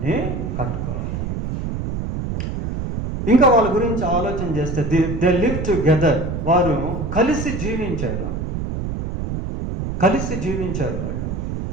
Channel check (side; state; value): right; noise; rumble, 4 dB below the sound